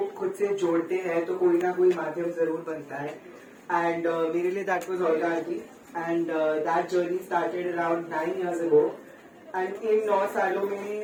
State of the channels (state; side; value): identical; both; correlation 1.00